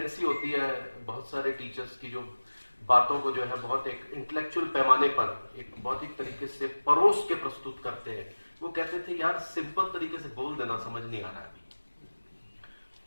होती है बहुत सारे टीचर्स की, जो बातों को जो है बहुत एक इंटेलेक्चुअल पैमाने पर एक बौद्धिक तरीके से परोस के प्रस्तुत करते हैं। वो कहते थे यार सिंपल तरीके से बोल देना, समझ नहीं आ रहा है अभी।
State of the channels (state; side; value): inverted; both; correlation -1.00